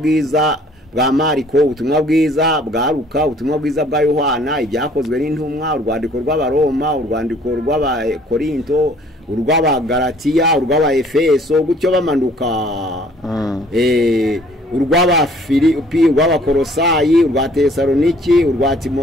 bwa Mariko, ubutumwa bwiza bwa Luka, ubutumwa bwiza bwa Yohana, ibyakozwe n'intumwa, urwandiko rw'Abaroma, urwandiko rw'Abakorinto, urw'Abagalatiya, urw'Abaefeso, gutyo bamanuka. Urw'Abafilipi, urw'Abakolosayi, urwa Tesaloniki, urwa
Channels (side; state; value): both; normal; correlation 0.57